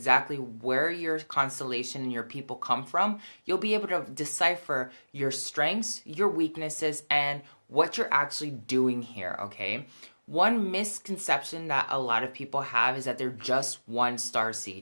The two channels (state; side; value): inverted; both; correlation -1.00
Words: where your constellation and your people come from, you'll be able to decipher your strengths, your weaknesses, and what you're actually doing here, okay? One misconception that a lot of people have is that they're just one